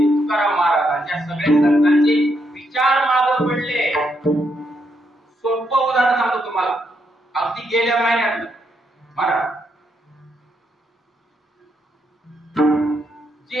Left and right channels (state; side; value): normal; both; correlation 0.78